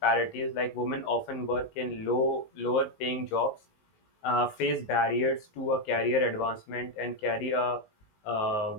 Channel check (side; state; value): right; late; 19 ms